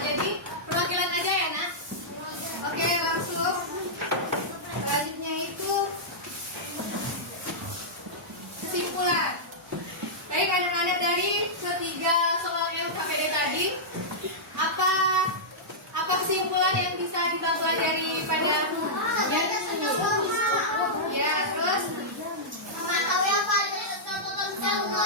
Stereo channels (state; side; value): normal; both; correlation -0.11